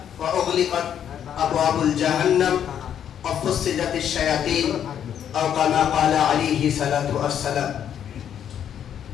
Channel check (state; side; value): quieter; right; 9.3 dB